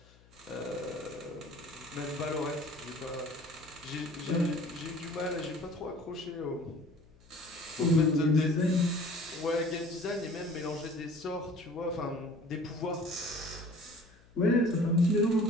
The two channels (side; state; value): left; noise; hum, 27 dB below the sound